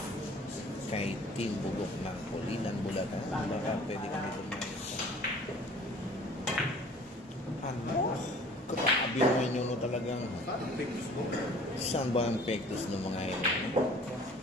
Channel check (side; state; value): both; normal; correlation 0.49